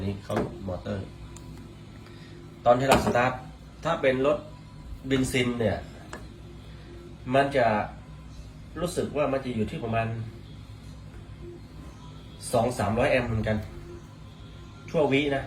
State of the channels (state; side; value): identical; both; correlation 1.00